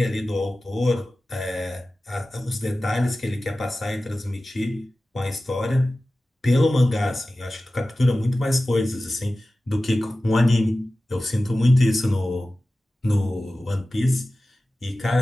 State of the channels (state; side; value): normal; both; correlation 0.96